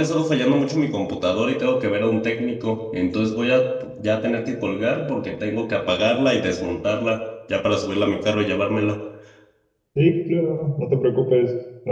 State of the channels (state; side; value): identical; both; correlation 1.00